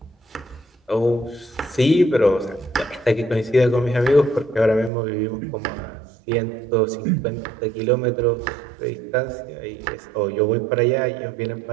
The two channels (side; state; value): left; drops out; at 4.9 s